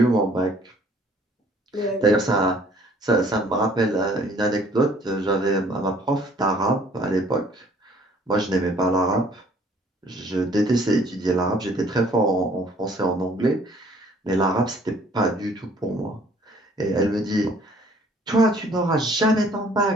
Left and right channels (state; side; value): normal; both; correlation 0.58